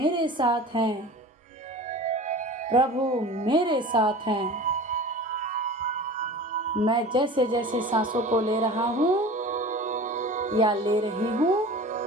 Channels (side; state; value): both; normal; correlation 0.38